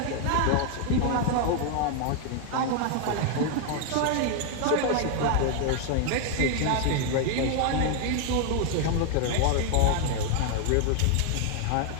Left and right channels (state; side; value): different; both; correlation 0.01